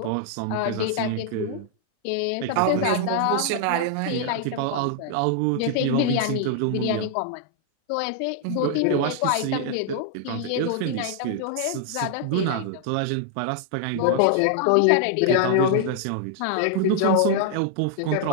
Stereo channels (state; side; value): different; both; correlation 0.00